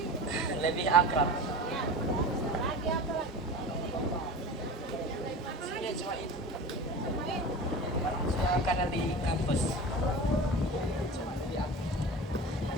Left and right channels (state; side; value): normal; both; correlation 0.32